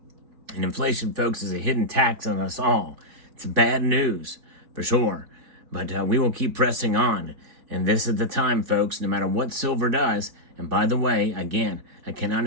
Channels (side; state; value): left; late; 4.2 ms